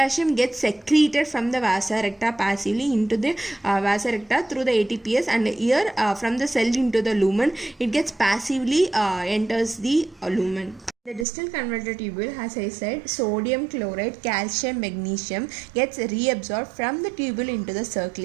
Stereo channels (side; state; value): left; drops out; at 11.2 s